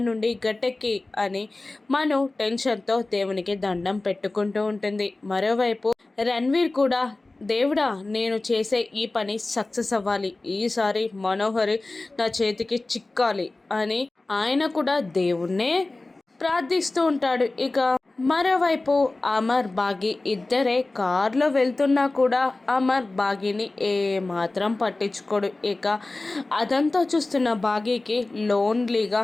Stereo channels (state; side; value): quieter; right; 3.1 dB